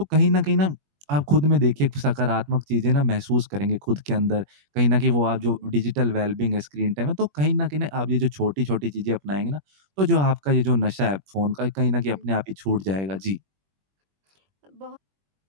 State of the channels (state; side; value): late; left; 21 ms